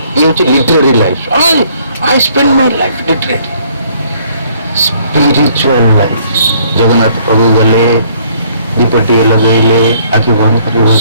ଇଏ ହଉଛି literary life. I spend my life literally. Spiritual life. Jagannath ପ୍ରଭୁ ଗଲେ, ଦୀପଟିଏ ଲଗେଇଲେ, ଆଖି ବନ୍ଦ କରି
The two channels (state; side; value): inverted; both; correlation -0.63